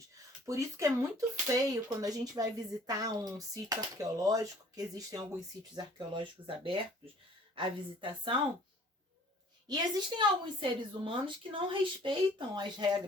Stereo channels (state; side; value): normal; both; correlation 0.53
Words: Por isso que é muito feio quando a gente vai visitar um sítio arqueológico, que existem alguns sítios arqueológicos abertos à visitação, e existem alguns seres humanos que não respeitam as